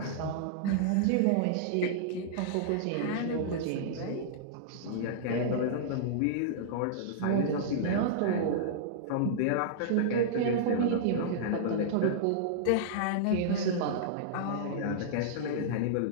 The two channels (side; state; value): both; different; correlation -0.02